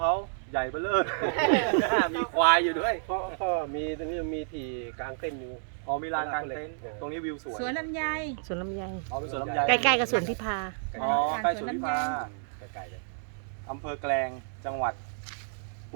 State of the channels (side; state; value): left; silent; digital silence